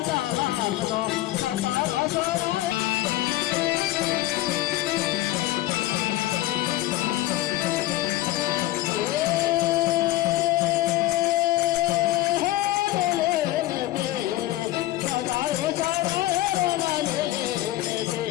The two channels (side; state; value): right; quieter; 16.0 dB